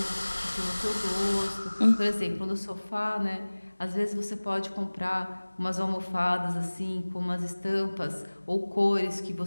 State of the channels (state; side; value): inverted; both; correlation -1.00